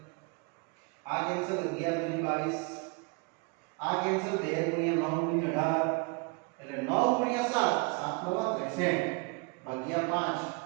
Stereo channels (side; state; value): left; quieter; 30.7 dB